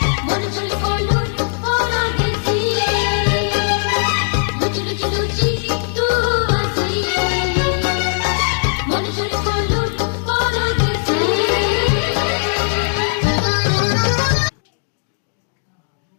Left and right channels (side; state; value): right; silent; digital silence